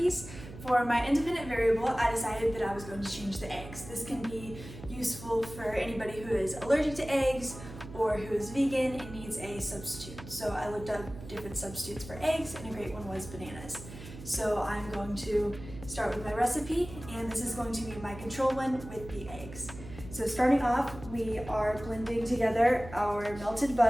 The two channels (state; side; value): noise; right; hum, 14 dB below the sound